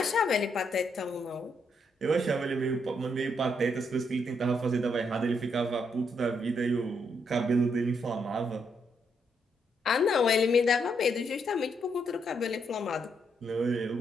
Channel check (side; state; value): both; normal; correlation 0.76